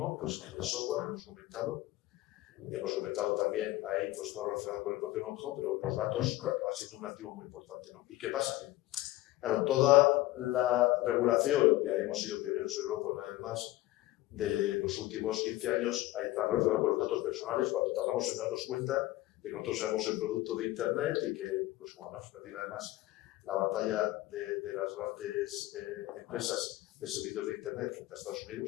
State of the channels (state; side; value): quieter; right; 17.1 dB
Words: pues, en el software, hemos comentado también ahí pues, todo relacionado con el propio know-how, pero los datos acaban siendo un activo muy importante, ¿no? ¿Y qué pasa? Claro, toda la regulación, ya hemos sido pioneros en Europa una vez más, de los últimos 15 años está relacionada con los datos personales, cuando tardamos en darnos cuenta de que nosotros seamos el producto de Internet y que, pues como hemos perdido además la batalla de las grandes empresas de servicios de Internet frente a Estados